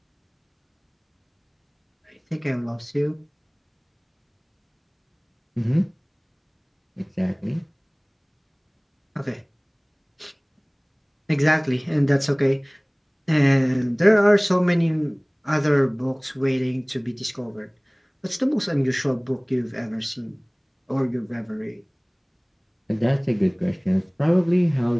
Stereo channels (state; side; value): identical; both; correlation 1.00